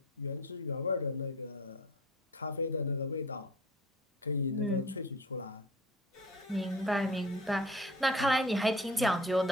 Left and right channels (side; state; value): both; normal; correlation 0.43